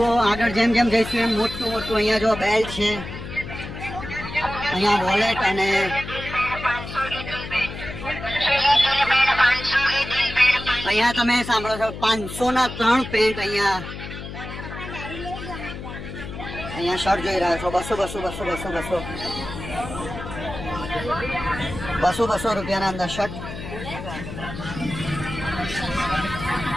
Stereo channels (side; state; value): left; noise; hum, 10 dB below the sound